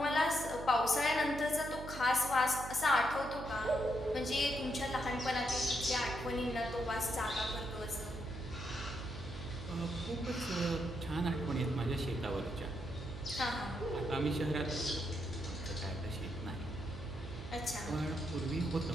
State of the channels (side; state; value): right; noise; hum, 9 dB below the sound